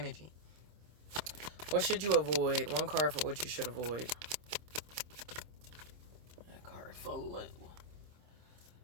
What should you avoid? One card for what you should avoid. That card for little.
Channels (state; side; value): late; left; 26 ms